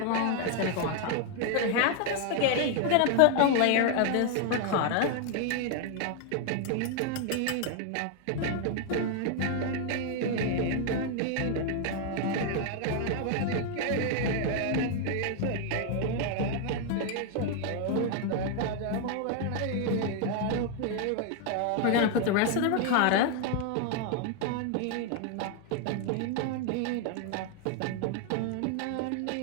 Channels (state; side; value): different; both; correlation 0.00